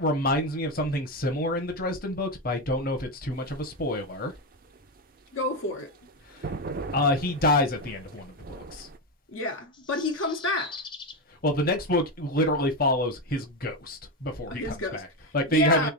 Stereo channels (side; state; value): both; normal; correlation 0.12